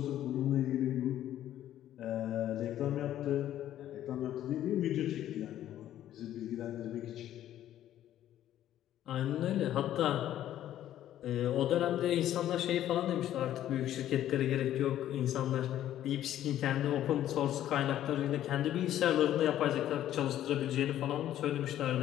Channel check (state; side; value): quieter; right; 12.2 dB